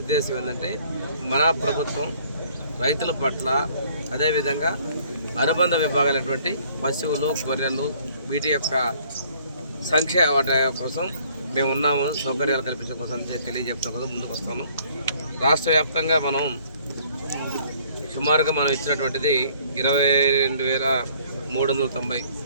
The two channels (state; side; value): inverted; both; correlation -0.59